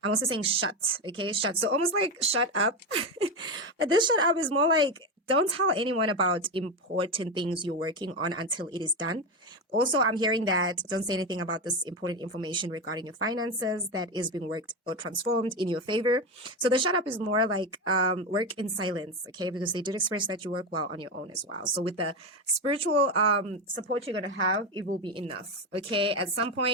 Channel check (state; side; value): normal; both; correlation 0.15